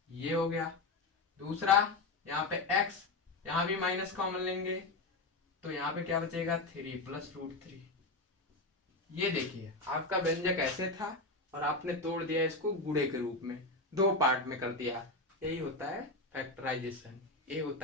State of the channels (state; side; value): quieter; right; 3.1 dB